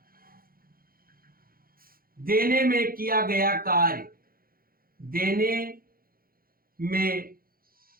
देने में किया गया कार्य, देने में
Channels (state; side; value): late; left; 0.42 ms